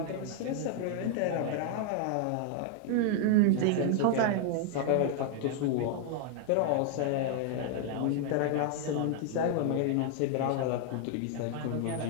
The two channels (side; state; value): both; different; correlation 0.00